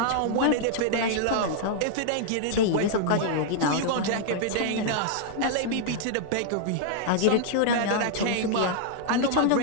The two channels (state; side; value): different; both; correlation -0.01